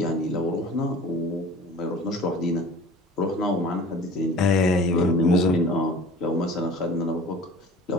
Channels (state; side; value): normal; both; correlation 0.43